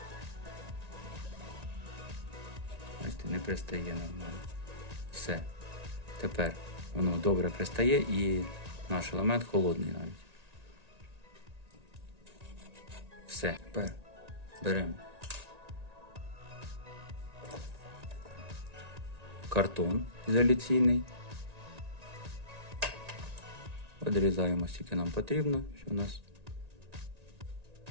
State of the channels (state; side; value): late; left; 1.9 ms